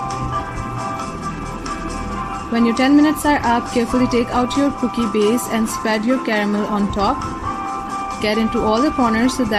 When your 10 minutes are up, carefully take out your cookie base and spread your caramel on top. Get into all the corners so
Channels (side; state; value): both; identical; correlation 1.00